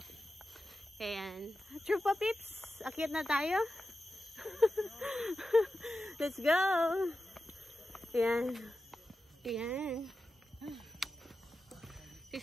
Ayan. Trupa Pips, akyat na tayo. Let's go. Ayan. Ayan.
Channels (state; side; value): normal; both; correlation 0.92